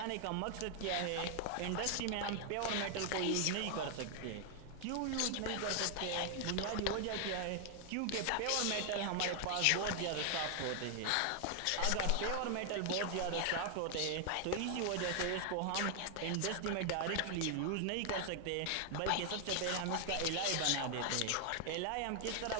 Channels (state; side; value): different; both; correlation 0.00